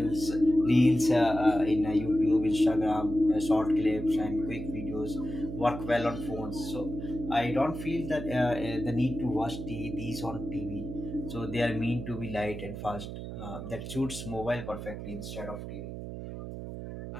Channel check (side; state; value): right; noise; hum, 8 dB below the sound